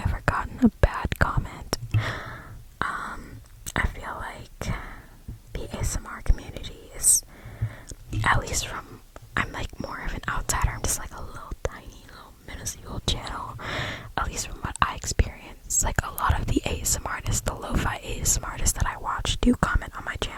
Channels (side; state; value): both; identical; correlation 1.00